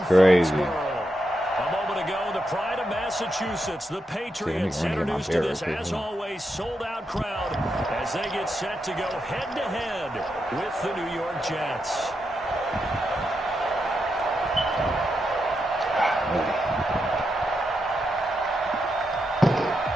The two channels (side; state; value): both; normal; correlation 0.84